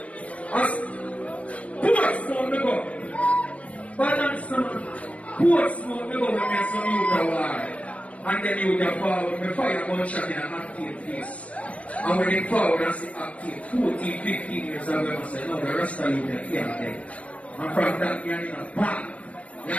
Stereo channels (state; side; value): late; right; 0.065 ms